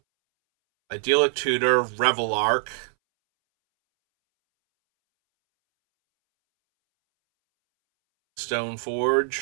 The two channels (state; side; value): silent; left; 63 dB below the other